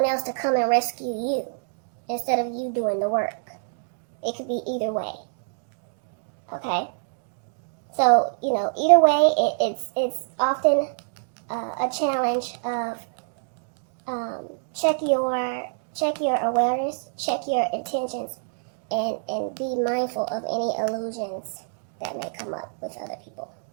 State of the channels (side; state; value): left; silent; digital silence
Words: else to come and rescue you instead of you doing the work. It could be either way. Okay? So, either way, it's often a challenge of check your awareness, check your intentions, and be mindful of any illusions that may come up with other people.